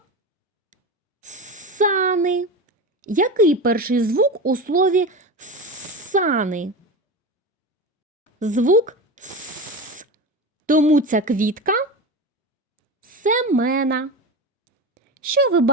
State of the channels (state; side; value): normal; both; correlation 0.25